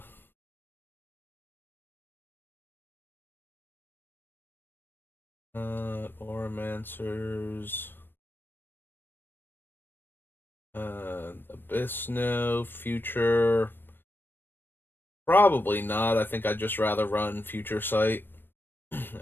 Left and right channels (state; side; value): late; right; 0.096 ms